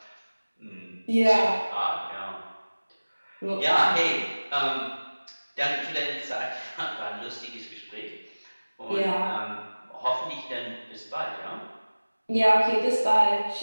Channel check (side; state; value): both; inverted; correlation -1.00